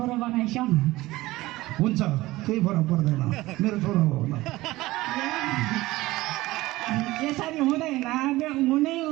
बनाइस हुन्छ केही फरक पर्दैन मेरो छोरो हो न यसरी हुँदैन हुनै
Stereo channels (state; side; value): quieter; left; 18.5 dB